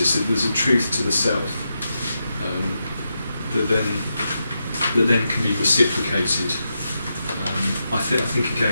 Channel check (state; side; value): inverted; both; correlation -0.86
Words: That there's a truth to the self that then can be reciprocated. I think